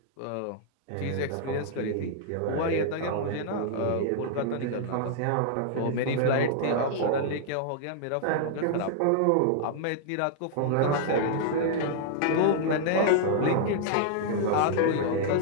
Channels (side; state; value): both; different; correlation -0.01